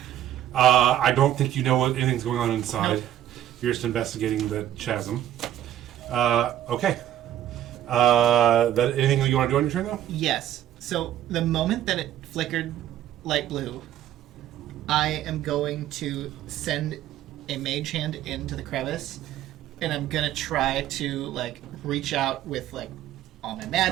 I don't think you know what anything's going on inside. Nope. You're just investigating the chasm. Okay. That anything that you want to do on your turn, though? Yes. So the moment that it flickered light blue, I am going to send a mage hand into the crevice, and I'm gonna try to reach out with all my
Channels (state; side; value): quieter; left; 12.0 dB